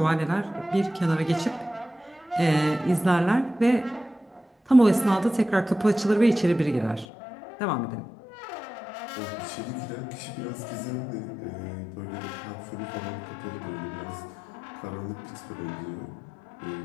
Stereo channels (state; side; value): drops out; right; at 7.1 s